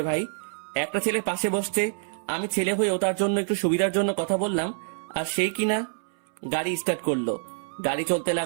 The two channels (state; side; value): silent; left; 61 dB below the other